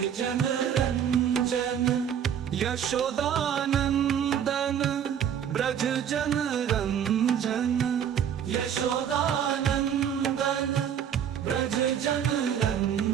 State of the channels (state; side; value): quieter; left; 8.8 dB